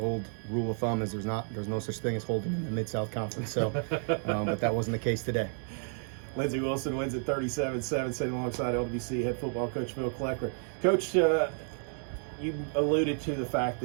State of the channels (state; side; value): silent; left; 57 dB below the other